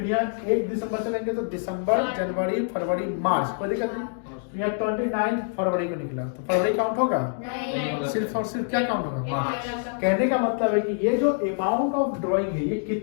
यहाँ 1 दिसंबर चलेंगे तो दिसंबर, जनवरी, फरवरी, मार्च, कोई दिक्कत नहीं। यहाँ 29 फरवरी को निकला तो फरवरी काउंट होगा, सिर्फ और सिर्फ क्या काउंट होगा मार्च। कहने का मतलब है कि ये जो अमाउंट ऑफ ड्राइंग है ये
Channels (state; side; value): silent; right; digital silence